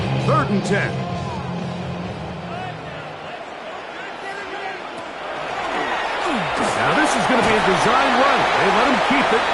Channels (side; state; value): both; identical; correlation 1.00